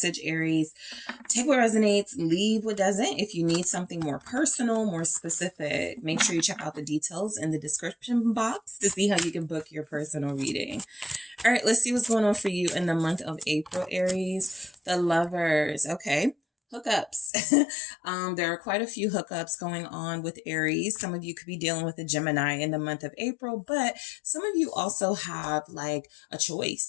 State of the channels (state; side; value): drops out; right; at 17.3 s